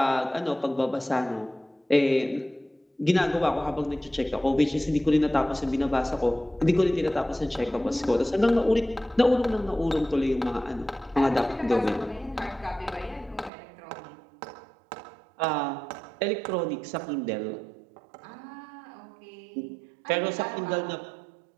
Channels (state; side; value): drops out; left; at 13.5 s